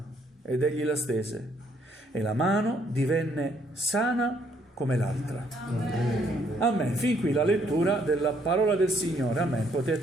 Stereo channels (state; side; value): normal; both; correlation 0.68